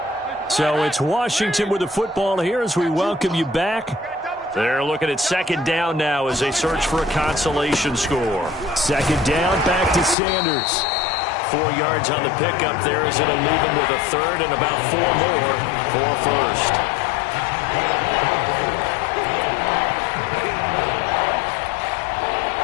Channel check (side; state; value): right; drops out; at 10.2 s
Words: So it's Washington with the football here as we welcome you back. They're looking at 2nd down now as they search for a consolation score. 2nd down, back to Sanders. 4 yards on the pickup there as it'll leave him with a 3rd and about 4 more for a 1st.